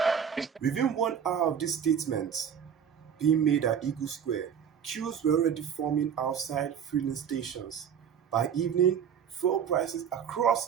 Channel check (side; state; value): left; quieter; 8.0 dB